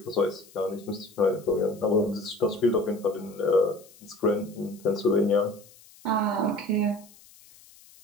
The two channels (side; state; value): left; noise; hiss, 24 dB below the sound